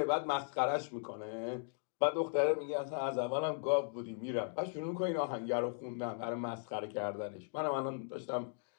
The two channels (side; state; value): right; silent; digital silence